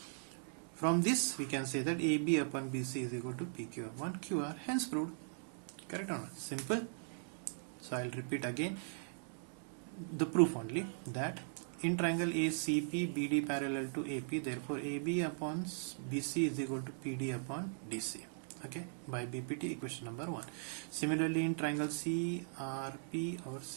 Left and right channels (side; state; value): left; silent; digital silence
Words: From this we can say that AB upon BC is equal to PQ upon QR, hence proved. Correct or not? Simple. So I'll repeat again the proof only, that in triangle ACP BD parallel to AP, therefore AB upon BC is equal to PD upon DC. Okay, by BPT equation number 1. Similarly, in triangle CRP or